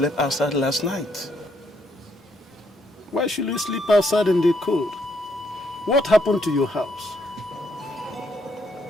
outside last night? Why should you sleep outside in the cold? What happened to your house?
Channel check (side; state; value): both; normal; correlation 0.73